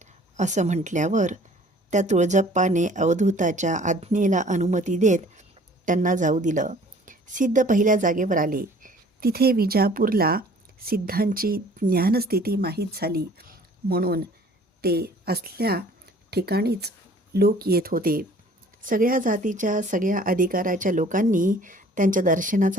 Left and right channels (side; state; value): both; normal; correlation 0.52